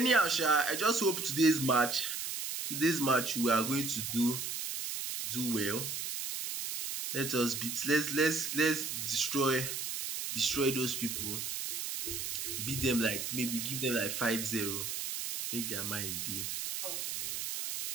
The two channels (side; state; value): right; noise; hiss, 4 dB below the sound